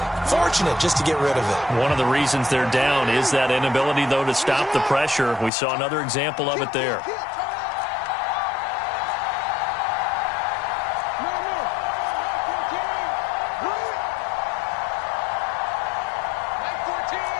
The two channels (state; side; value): drops out; right; at 5.5 s